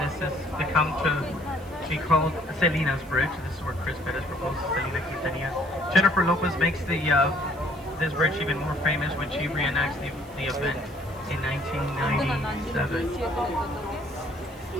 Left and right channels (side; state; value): right; noise; hiss, 25 dB below the sound